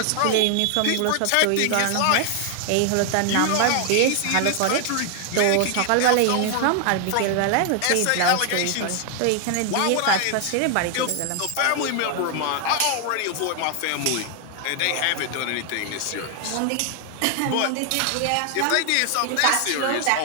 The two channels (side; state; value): both; different; correlation 0.00